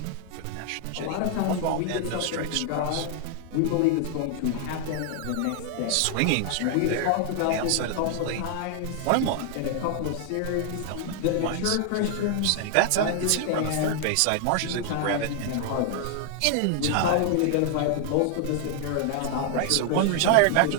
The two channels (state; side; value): different; both; correlation 0.00